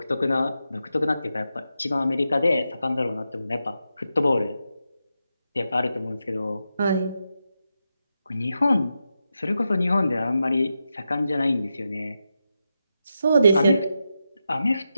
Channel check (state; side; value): inverted; both; correlation -0.88